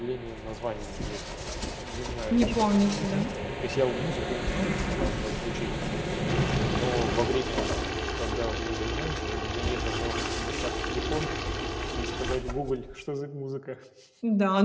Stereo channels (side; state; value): both; identical; correlation 1.00